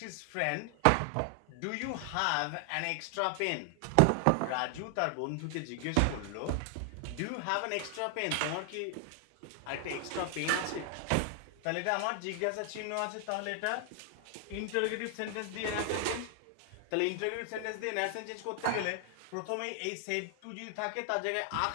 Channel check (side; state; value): both; different; correlation 0.00